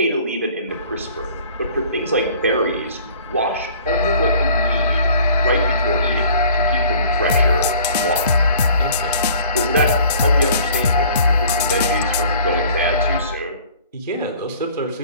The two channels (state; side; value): inverted; both; correlation -0.51